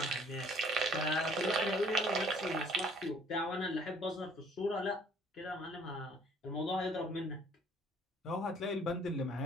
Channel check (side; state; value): both; normal; correlation 0.57